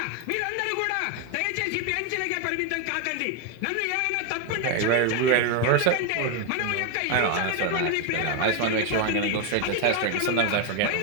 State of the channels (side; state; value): both; different; correlation 0.01